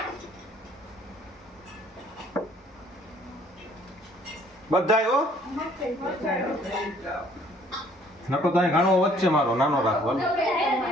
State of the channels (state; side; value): normal; both; correlation 0.59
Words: બધાય હો નકો તો અહીં ઘણો વચ્ચે મારો નાનો રાખો.